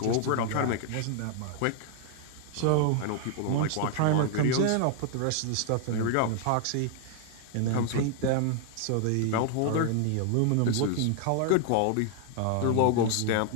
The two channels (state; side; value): different; both; correlation 0.00